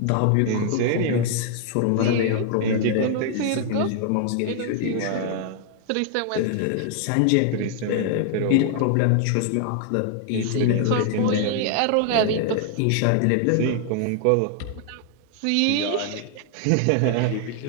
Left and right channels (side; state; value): both; different; correlation 0.00